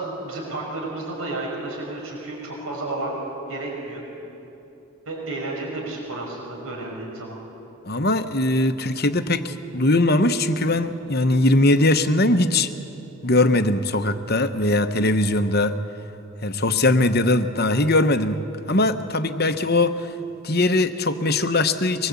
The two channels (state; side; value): normal; both; correlation 0.36